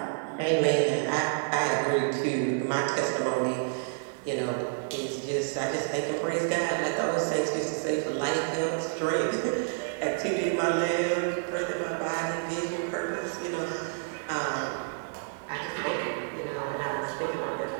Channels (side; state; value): left; silent; digital silence